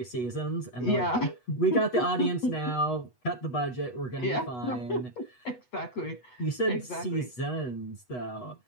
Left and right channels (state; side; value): late; right; 8.1 ms